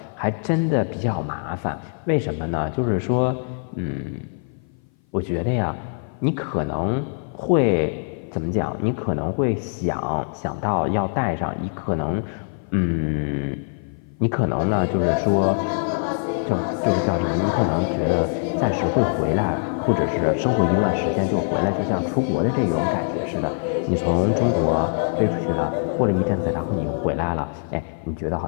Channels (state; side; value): silent; right; 58 dB below the other